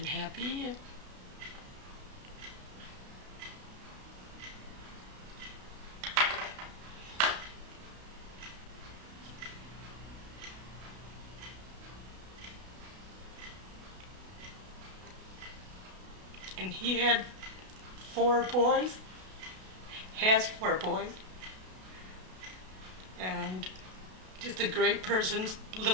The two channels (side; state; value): left; late; 32 ms